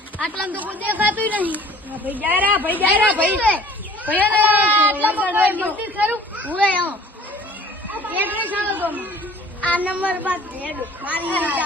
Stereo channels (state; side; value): normal; both; correlation 0.49